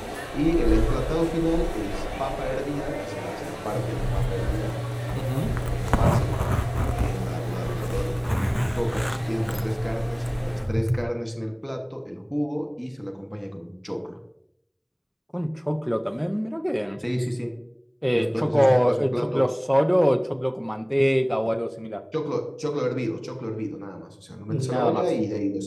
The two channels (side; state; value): both; identical; correlation 1.00